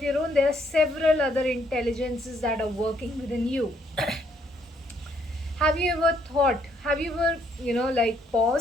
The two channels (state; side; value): normal; both; correlation 0.70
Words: own, there are several other intelligences that are working within you. Have you ever thought, have you ever, like